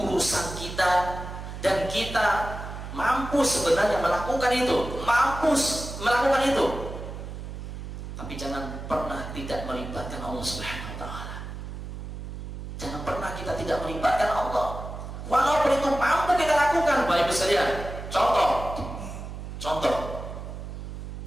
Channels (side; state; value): right; noise; hum, 9 dB below the sound